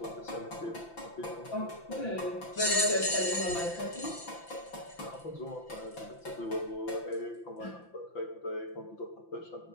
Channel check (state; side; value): late; right; 5.9 ms